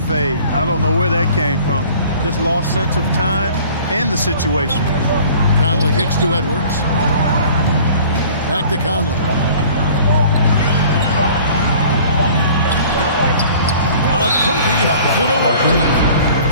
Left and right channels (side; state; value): both; inverted; correlation -0.49